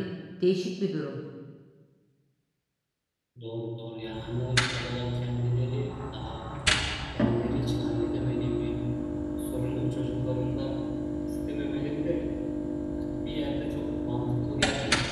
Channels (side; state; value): both; identical; correlation 1.00